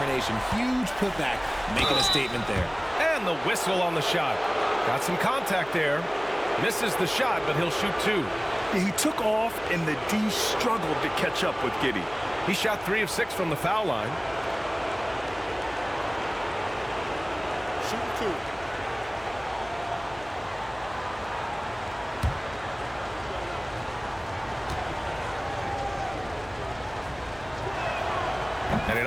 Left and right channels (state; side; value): noise; left; hum, 21 dB below the sound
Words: Huge putback, making a statement there. And the whistle on the shot. Got some contact there. Misses the shot, but he'll shoot 2. He took off, and the D struggled to catch up with Giddey. He shot 3 of 6 from the foul line. Shoot 2. And he